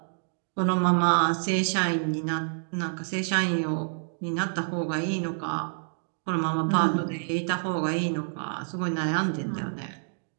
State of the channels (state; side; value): silent; left; digital silence